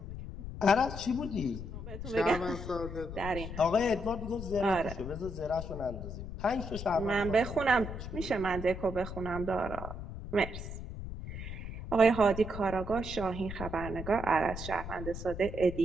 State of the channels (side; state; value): left; noise; rumble, 8 dB below the sound